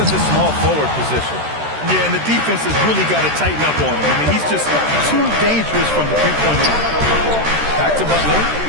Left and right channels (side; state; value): left; late; 13 ms